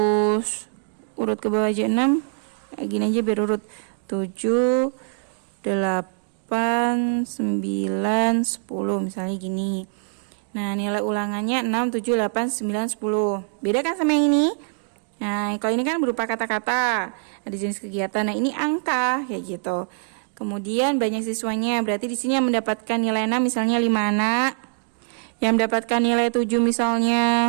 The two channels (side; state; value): left; silent; 63 dB below the other